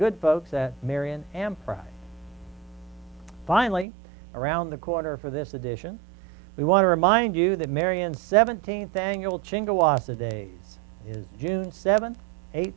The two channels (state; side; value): drops out; left; at 3.9 s